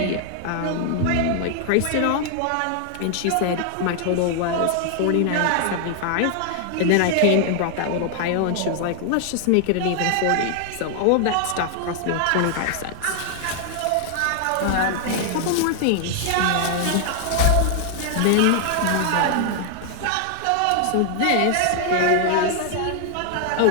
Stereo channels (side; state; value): both; different; correlation 0.00